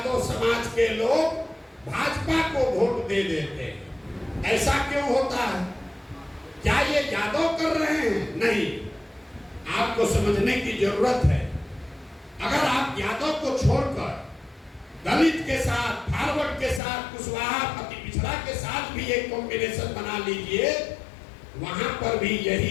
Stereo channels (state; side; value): drops out; right; at 16.8 s